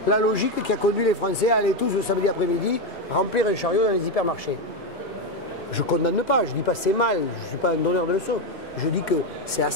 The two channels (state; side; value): normal; both; correlation 0.09